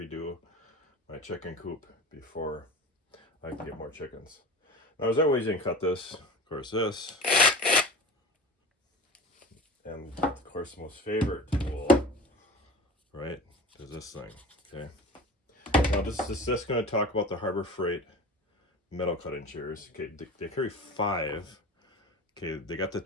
my chicken coop before I can get more chickens. Now, there's other ways you can cut this. Of course, this, and of course, the most favorite tool, right, is this thing. Okay. Now, this is just going to talk about the Harbor Freight metal cutting shears. Okay, they carry 5. Okay, they got the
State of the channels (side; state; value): both; normal; correlation 0.36